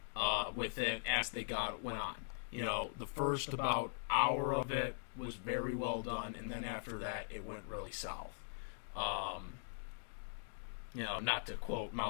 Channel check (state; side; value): silent; right; digital silence